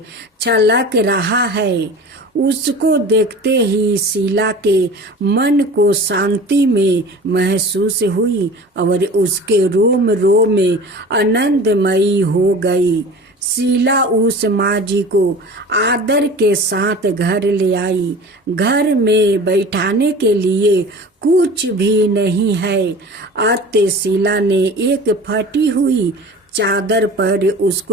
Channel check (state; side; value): normal; both; correlation 0.39